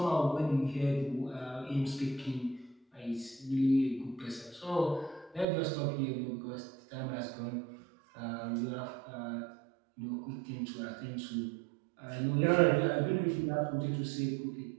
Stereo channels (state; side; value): drops out; left; at 5.5 s